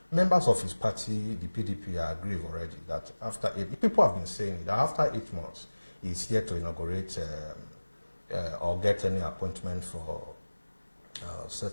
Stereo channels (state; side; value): inverted; both; correlation -1.00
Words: Members of his party, the PDP, are aggrieved already that people have been saying that after 8 months, he's here to inaugurate or get any appointment for